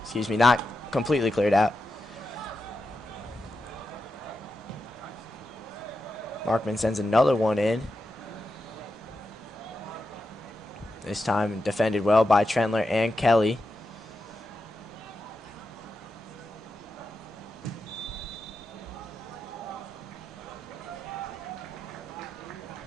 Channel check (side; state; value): both; normal; correlation 0.88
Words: completely cleared out. Markman sends another one in. This time defended well by Trentler and Kelly.